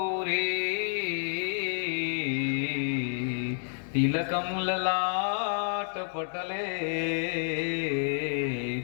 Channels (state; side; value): silent; right; digital silence